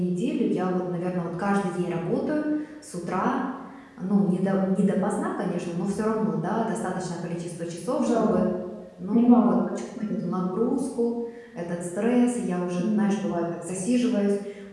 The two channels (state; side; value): identical; both; correlation 1.00